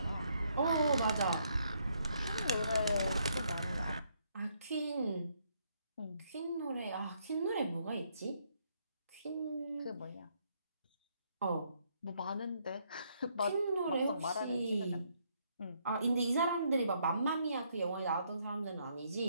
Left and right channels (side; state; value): both; inverted; correlation -0.72